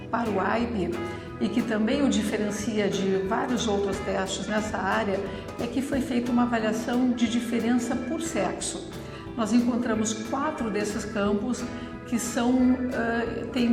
para o AIP e que também o diferencia de vários outros testes nessa área, é que foi feita uma avaliação de diferença por sexo. Nós encontramos 4 desses campos que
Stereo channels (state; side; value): identical; both; correlation 1.00